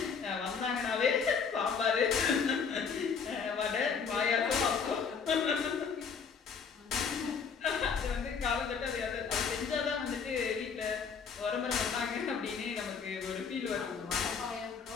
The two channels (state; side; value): quieter; right; 6.0 dB